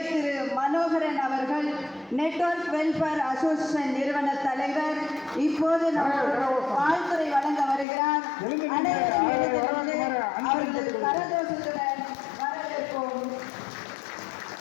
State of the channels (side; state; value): right; drops out; at 7.9 s